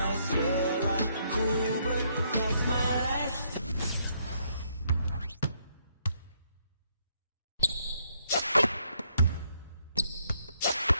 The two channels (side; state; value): both; inverted; correlation -0.72